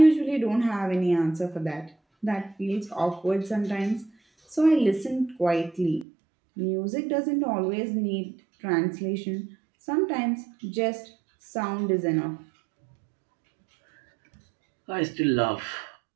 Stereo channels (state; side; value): drops out; left; at 6.1 s